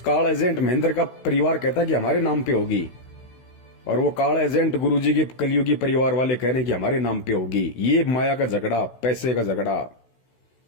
एजेंट महेंद्र का परिवार कहता है कि हमारे नाम पे होगी, और वो काल एजेंट गुरुजी के कलयुगी परिवार वाले कह रहे हैं कि हमारे नाम पे होगी। ये माया का झगड़ा, पैसे का झगड़ा।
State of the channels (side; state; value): right; late; 16 ms